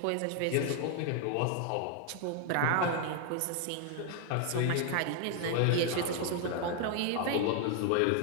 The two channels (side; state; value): both; different; correlation 0.00